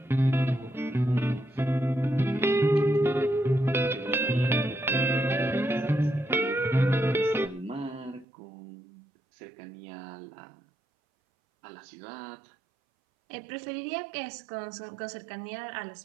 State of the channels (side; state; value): left; drops out; at 8.2 s